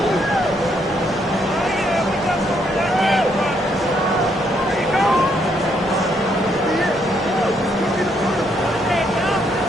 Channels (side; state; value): both; normal; correlation 0.73